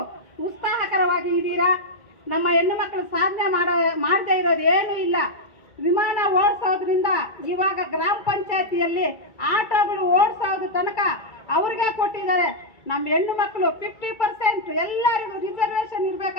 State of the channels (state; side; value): late; right; 2.3 ms